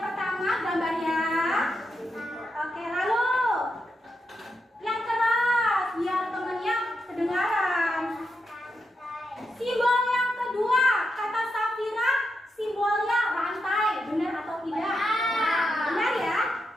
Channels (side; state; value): both; normal; correlation 0.85